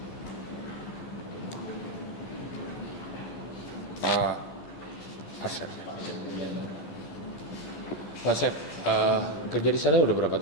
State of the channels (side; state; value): right; late; 12 ms